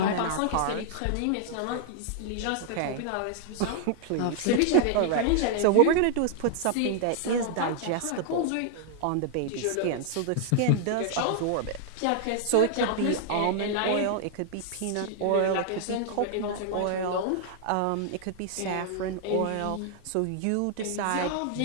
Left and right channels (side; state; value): both; different; correlation 0.00